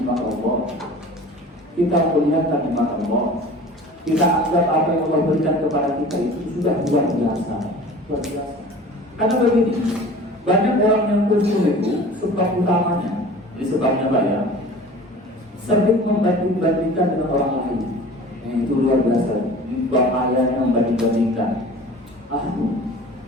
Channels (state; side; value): normal; both; correlation 0.42